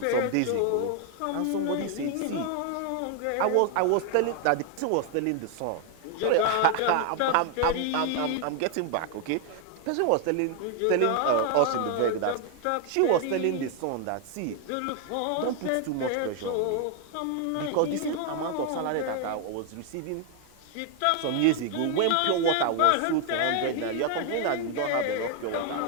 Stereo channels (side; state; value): both; different; correlation 0.00